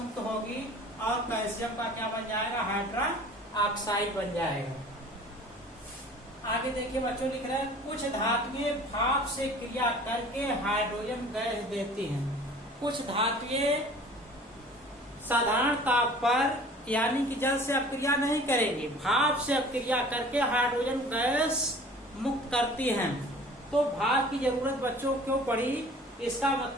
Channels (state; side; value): normal; both; correlation 0.46